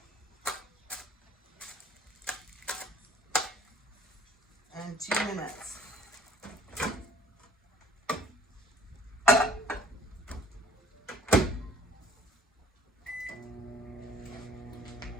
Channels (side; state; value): both; normal; correlation 0.53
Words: And 2 minutes.